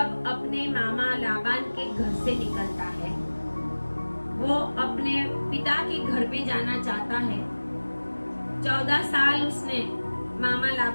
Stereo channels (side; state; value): both; inverted; correlation -1.00